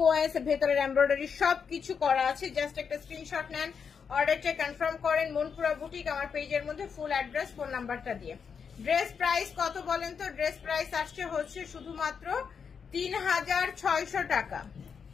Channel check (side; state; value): right; quieter; 6.4 dB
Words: ভেতরের এমব্রয়ডারি সবকিছু করা আছে। জাস্ট একটা স্ক্রিনশট নেন, অর্ডারটা কনফার্ম করেন মনপুরা বুটিক আমার পেজের মধ্যে, ফুল অ্যাড্রেস, ফোন নাম্বারটা দিয়ে। ড্রেস প্রাইস কত বলেন তো? ড্রেস প্রাইস আসছে হচ্ছে শুধুমাত্র 3600 টাকা।